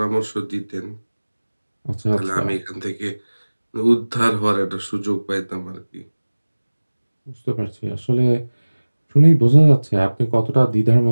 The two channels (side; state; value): both; inverted; correlation -1.00